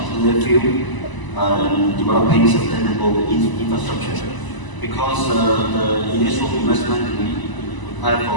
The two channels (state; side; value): late; right; 1.0 ms